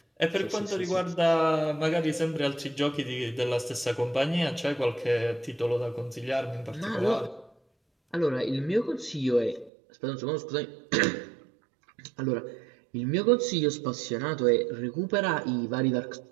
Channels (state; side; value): drops out; left; at 9.7 s